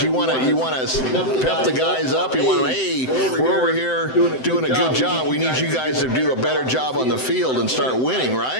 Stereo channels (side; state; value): right; late; 7.8 ms